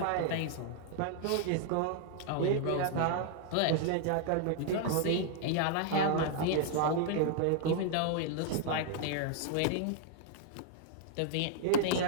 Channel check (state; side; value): different; both; correlation -0.01